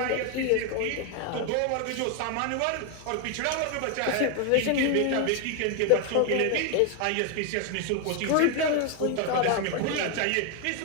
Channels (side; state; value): both; different; correlation 0.01